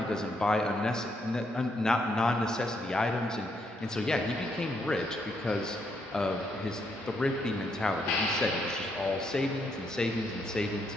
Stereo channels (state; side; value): normal; both; correlation 0.76